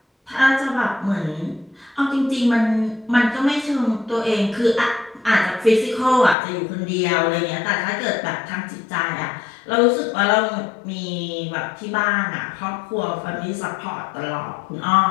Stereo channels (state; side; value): drops out; right; at 6.4 s